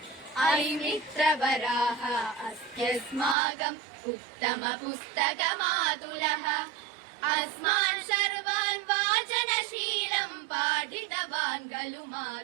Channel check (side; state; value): left; drops out; at 3.4 s